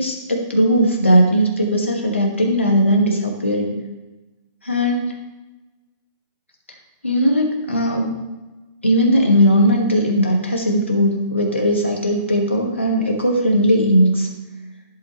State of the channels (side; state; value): both; inverted; correlation -0.61